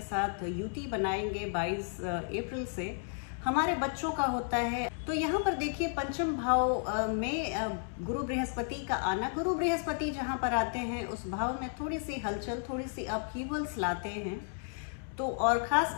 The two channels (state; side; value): silent; right; 56 dB below the other